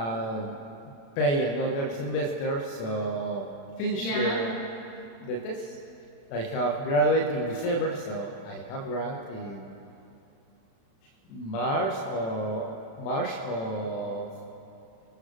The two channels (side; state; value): right; late; 36 ms